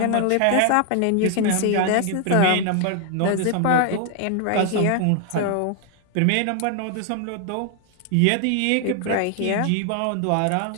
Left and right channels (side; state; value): both; different; correlation 0.00